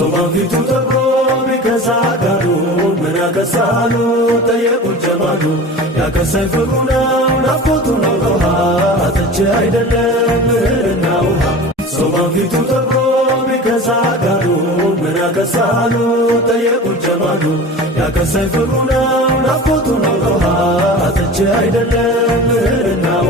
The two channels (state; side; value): normal; both; correlation 0.36